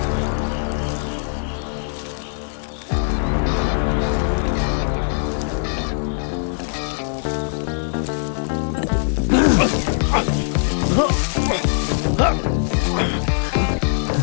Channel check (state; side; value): silent; right; digital silence